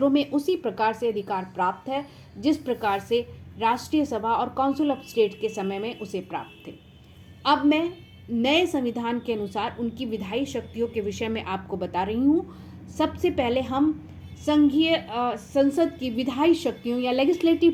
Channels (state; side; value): identical; both; correlation 1.00